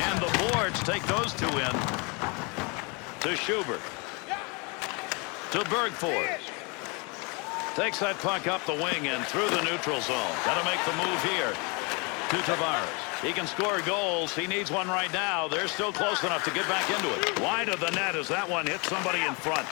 And the boards take those two in. To Schubert. To Bergford. Takes that puck up the wing and through the neutral zone. Got to make the move here. To Tavares. He can score goals. He needs one right now. They're still close enough to get back into it. Wide of the net as that one hits somebody in front.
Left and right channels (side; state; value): right; quieter; 31.0 dB